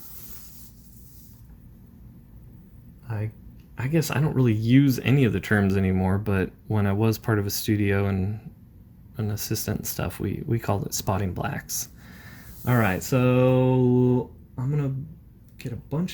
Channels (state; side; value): identical; both; correlation 1.00